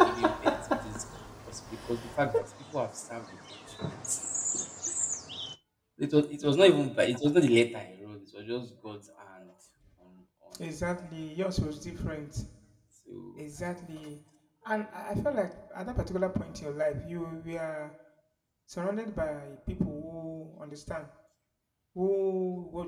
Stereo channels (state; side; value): identical; both; correlation 1.00